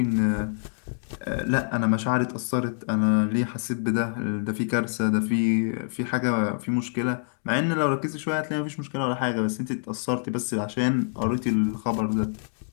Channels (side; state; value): right; silent; digital silence